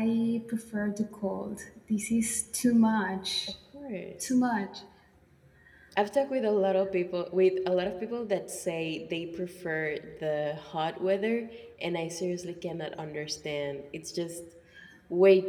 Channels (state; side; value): identical; both; correlation 1.00